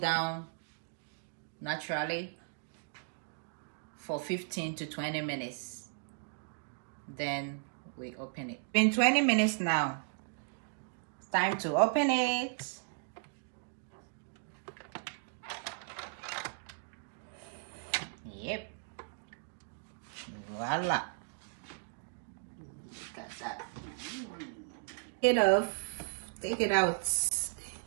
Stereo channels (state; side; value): silent; left; digital silence